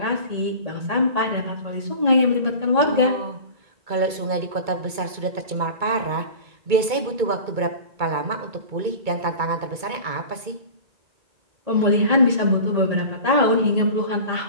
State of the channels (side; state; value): left; late; 2.2 ms